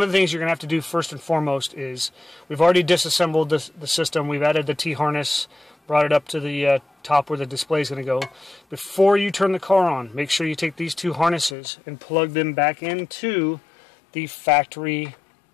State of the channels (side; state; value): right; drops out; at 11.6 s